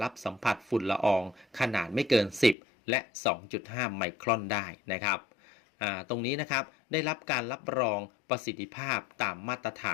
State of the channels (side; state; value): right; drops out; at 2.6 s